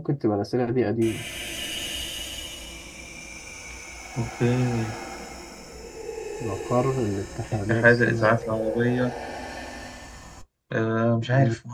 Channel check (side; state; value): both; identical; correlation 1.00